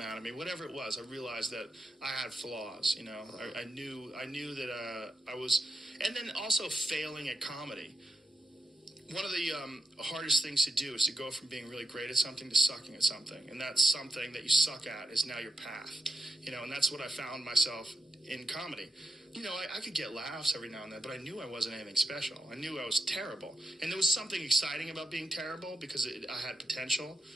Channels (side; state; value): both; normal; correlation 0.86